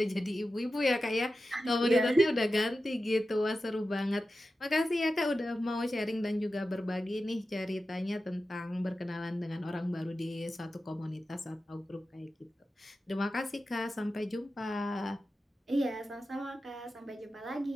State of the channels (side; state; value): both; normal; correlation 0.93